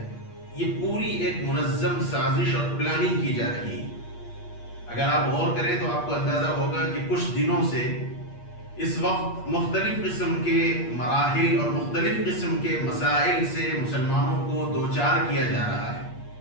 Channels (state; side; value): late; right; 8.5 ms